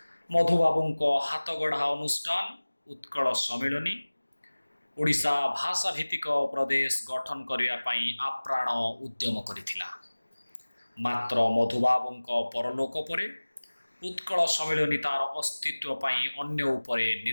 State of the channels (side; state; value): both; inverted; correlation -1.00